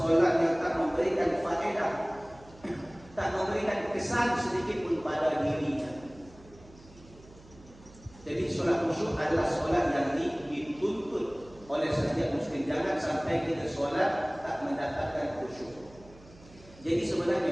yang tak memberi memberikan faedah, tak memberikan kesan sedikit pun pada dirinya. Jadi solat khusyuk adalah solat yang dituntut oleh setiap muslim. Jangan sampai kita solat tak mendapatkan khusyuk. Jadi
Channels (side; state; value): right; noise; hum, 23 dB below the sound